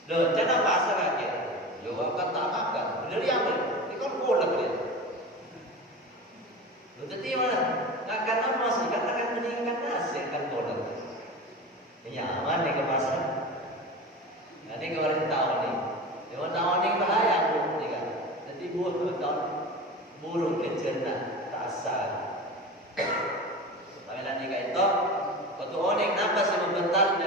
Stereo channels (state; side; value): normal; both; correlation 0.30